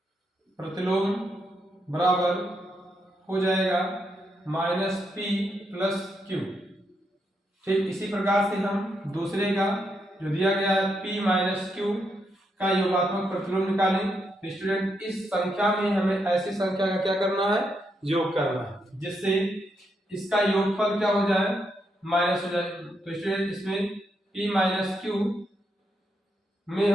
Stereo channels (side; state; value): both; normal; correlation 0.80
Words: प्रतिलोम बराबर हो जाएगा -P + Q। ठीक इसी प्रकार से हम दूसरे का जो दिया गया है P - Q का योगात्मक प्रतिलोम निकालें। तो स्टूडेंट इस संख्या में हमें ऐसी संख्या का क्या करना है, योग करना है, जिससे इसका योगफल क्या हो जाए, माइनस हो जाए। तो स्टूडेंट इसमें P - Q में